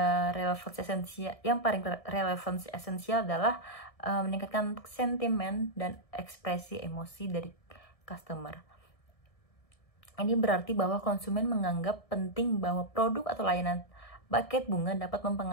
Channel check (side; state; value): right; late; 1.6 ms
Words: yang paling relevansi esensial adalah meningkatkan sentimen dan ekspresi emosi dari customer. Ini berarti bahwa konsumen menganggap penting bahwa produk atau layanan buket bunga dapat